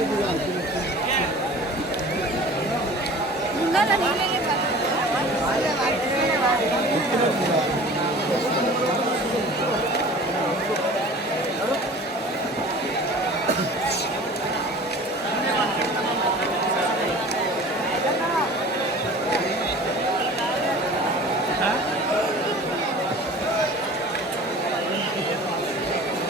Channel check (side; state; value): both; normal; correlation 0.42